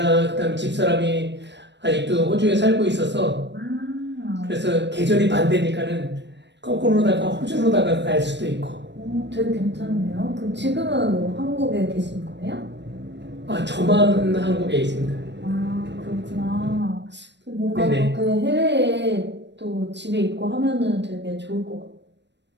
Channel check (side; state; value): left; late; 0.51 ms